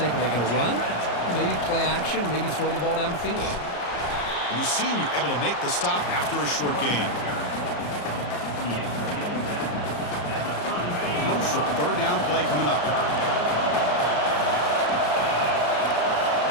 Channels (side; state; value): right; late; 34 ms